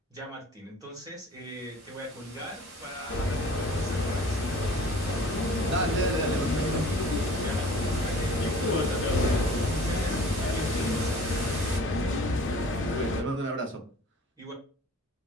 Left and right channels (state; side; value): normal; both; correlation 0.47